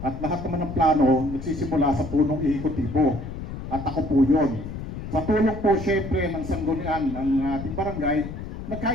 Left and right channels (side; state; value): left; noise; rumble, 8 dB below the sound